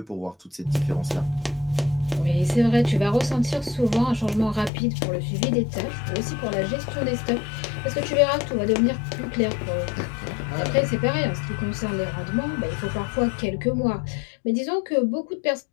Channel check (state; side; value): drops out; right; at 4.7 s